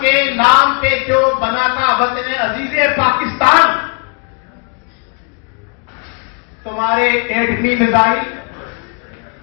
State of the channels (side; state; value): right; quieter; 35.6 dB